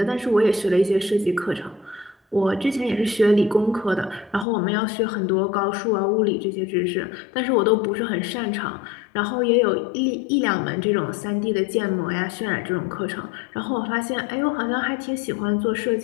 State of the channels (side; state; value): right; drops out; at 4.5 s